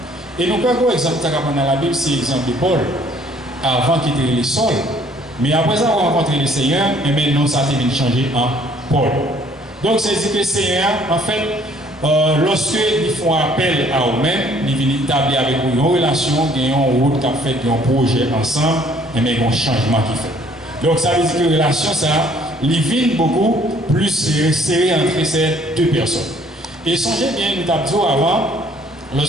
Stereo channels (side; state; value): both; normal; correlation 0.60